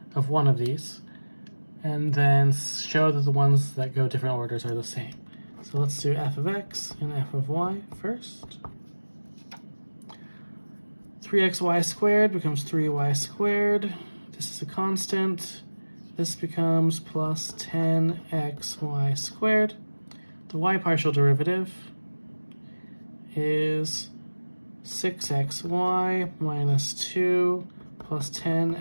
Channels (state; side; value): inverted; both; correlation -1.00